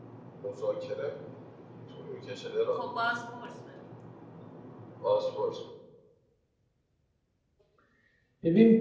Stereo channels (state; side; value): identical; both; correlation 1.00